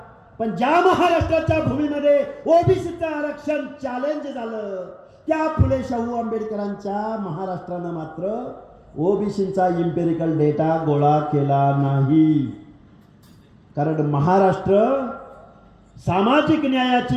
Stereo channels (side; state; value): both; identical; correlation 1.00